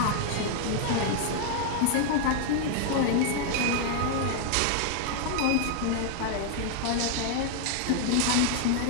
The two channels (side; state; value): both; different; correlation 0.00